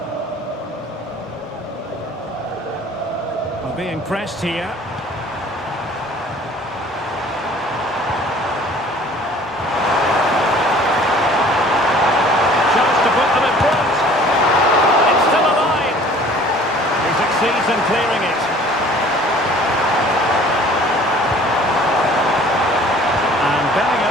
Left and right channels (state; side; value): normal; both; correlation 0.51